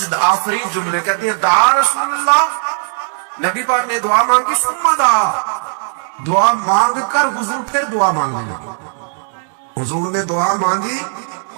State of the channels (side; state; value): left; silent; 69 dB below the other